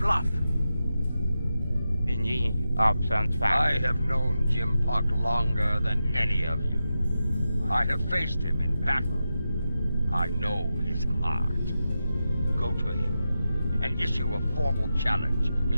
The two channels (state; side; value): inverted; both; correlation -0.90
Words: Thinking options I fast. have known Jim Puck longer than any of you. I have faced him in battle. I know his heart. Go to him and issue a formal challenge.